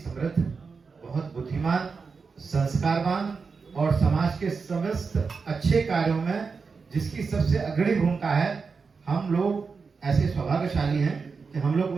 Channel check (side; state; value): left; quieter; 5.0 dB